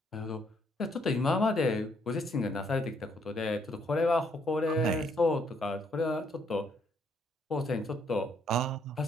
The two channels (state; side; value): normal; both; correlation 0.70